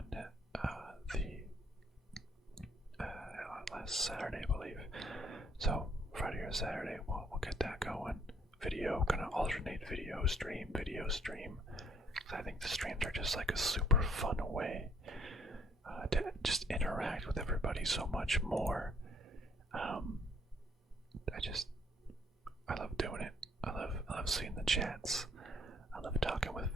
last Saturday, I believe. So Friday or Saturday, we'll get that going. Video, gonna alternate video stream. I think the streams are just like a super fun way to just interact with everybody so much more. I love doing it. I love seeing the chats. I love talking with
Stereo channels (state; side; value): normal; both; correlation 0.65